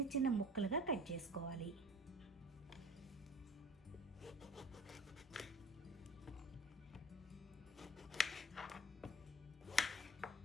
చిన్న ముక్కలుగా కట్ చేసుకోవాలి.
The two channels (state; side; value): normal; both; correlation 0.44